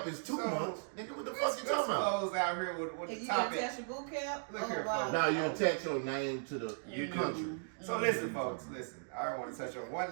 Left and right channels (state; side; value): silent; left; digital silence